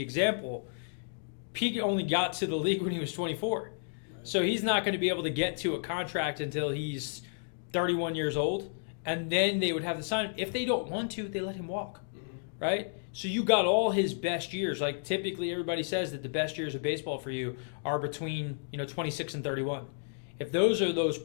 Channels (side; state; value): right; silent; digital silence